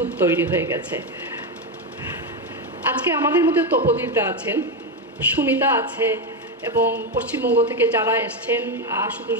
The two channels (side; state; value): both; normal; correlation 0.10